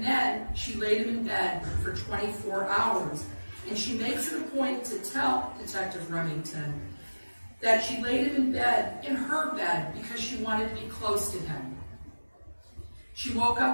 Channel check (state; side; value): inverted; both; correlation -1.00